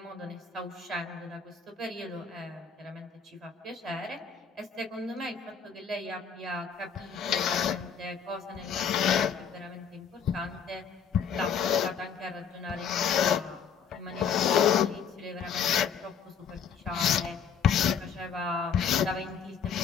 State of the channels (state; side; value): quieter; right; 6.8 dB